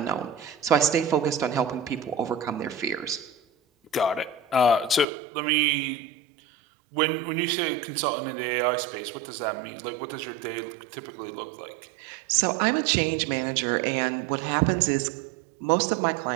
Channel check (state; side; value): drops out; left; at 5.1 s